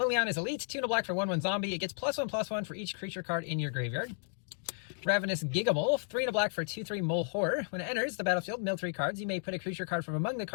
Elite, 2 and a black for 1/1 zombie. It gets +1/+1 for each creature card in your graveyard. Ravenous Gigamole, 3 and a black for 2/3 mole horror. When it enters the battlefield, mill 3 cards. You may put a creature card from among the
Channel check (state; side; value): silent; right; digital silence